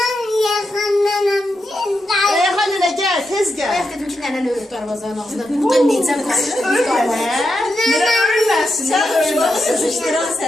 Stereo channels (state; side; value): normal; both; correlation 0.86